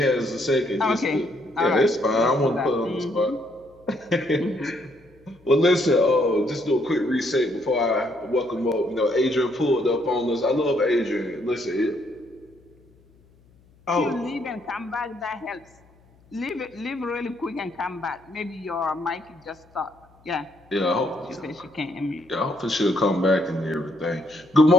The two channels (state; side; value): noise; left; hum, 30 dB below the sound